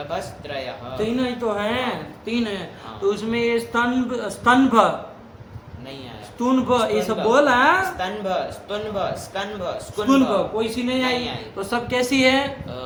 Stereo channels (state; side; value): identical; both; correlation 1.00